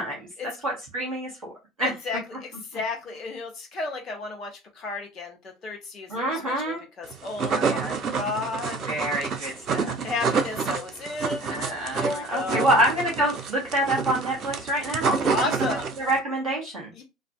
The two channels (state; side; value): normal; both; correlation 0.45